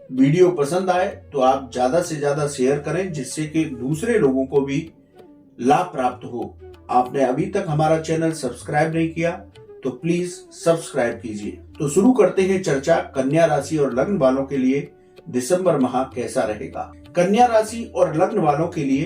वीडियो पसंद आए तो आप ज्यादा से ज्यादा शेयर करें, जिससे कि दूसरे लोगों को भी लाभ प्राप्त हो। आपने अभी तक हमारा चैनल सब्सक्राइब नहीं किया तो प्लीज सब्सक्राइब कीजिए। तो शुरू करते हैं चर्चा कन्या राशि और लग्न वालों के लिए दिसंबर माह कैसा रहेगा। कन्या राशि और लग्न वालों के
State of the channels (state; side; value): identical; both; correlation 1.00